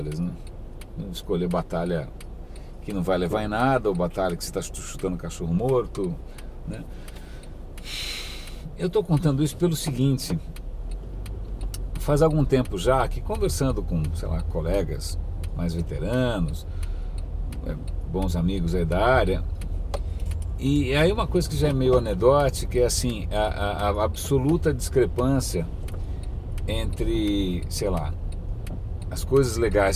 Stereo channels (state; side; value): identical; both; correlation 1.00